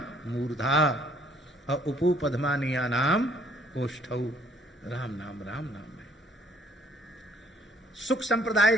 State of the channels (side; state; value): both; normal; correlation 0.62